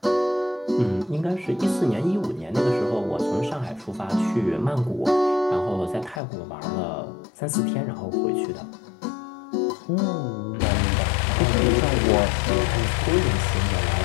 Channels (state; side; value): drops out; right; at 6.2 s